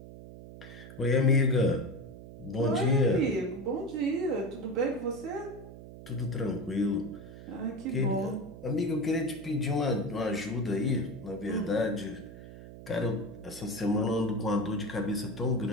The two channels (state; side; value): noise; right; hum, 15 dB below the sound